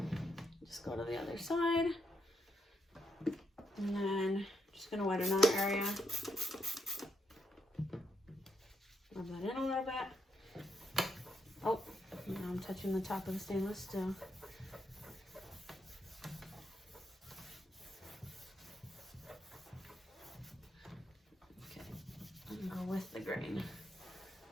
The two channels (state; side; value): normal; both; correlation 0.80